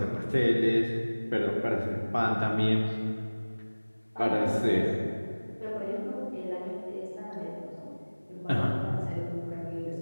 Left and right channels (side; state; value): both; inverted; correlation -1.00